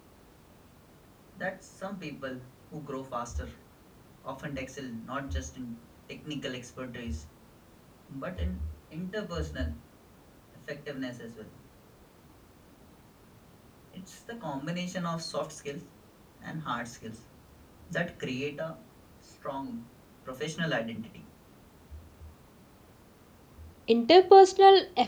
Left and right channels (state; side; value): identical; both; correlation 1.00